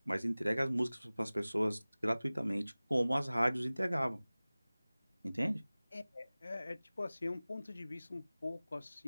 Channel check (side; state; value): both; inverted; correlation -0.99